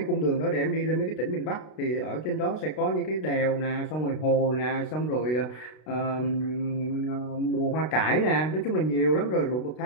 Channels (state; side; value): late; right; 32 ms